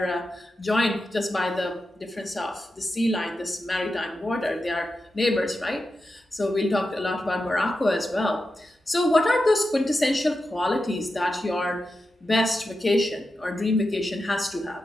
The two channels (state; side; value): normal; both; correlation 0.90